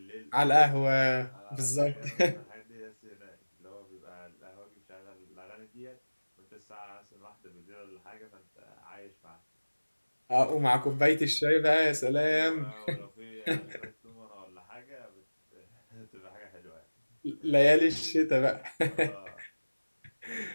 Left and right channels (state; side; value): inverted; both; correlation -1.00